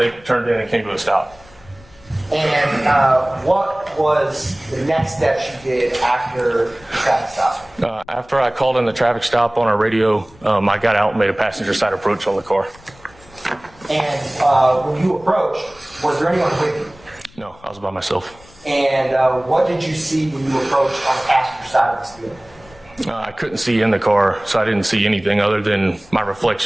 turned in and came to a stop. And what was the next steps you did after the traffic stop? After I called in the traffic stop on our radio, I got out and made a passenger side approach on the car. And when you approached, was there anyone with you? No, I was by myself. And what did you see when you approached on the passenger side of this vehicle? I couldn't see in the car, so I didn't see anything other than my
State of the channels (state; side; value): noise; left; rumble, 25 dB below the sound